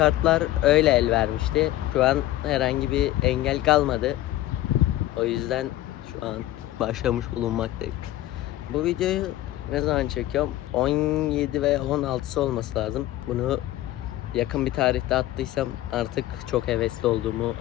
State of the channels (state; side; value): quieter; right; 14.9 dB